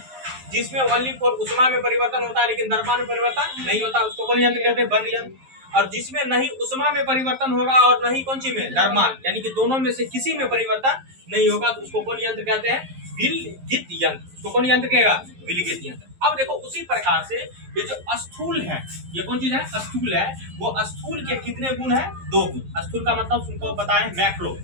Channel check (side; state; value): left; late; 11 ms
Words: जिसमें ओनली फॉर उष्मा में परिवर्तन होता है लेकिन द्रव्यमान में परिवर्तन नहीं होता, उसको कौन यंत्र कहते हैं, बंद यंत्र। और जिसमें नहीं उष्मा में परिवर्तन होगा और नहीं कौन सी में, द्रव्यमान, यानी कि दोनों में से किसी में परिवर्तन नहीं होगा, तो उसको कौन यंत्र कहते हैं, विलगित यंत्र। उसको कौन यंत्र कहेगा, विलगित यंत्र। अब देखो उसी प्रकार से ये जो स्थूल है, ये कौन चीज है, स्थूल है, वो स्थूल के कितने गुण है, 2 गुण। स्थूल का मतलब तुमको बताएं मैक्रो,